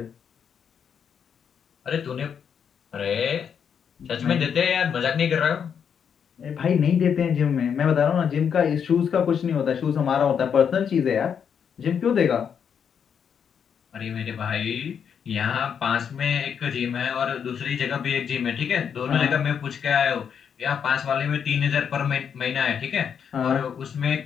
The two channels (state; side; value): quieter; right; 7.5 dB